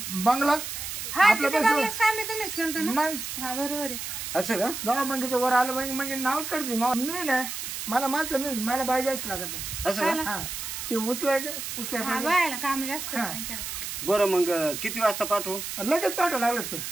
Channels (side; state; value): right; noise; hiss, 6 dB below the sound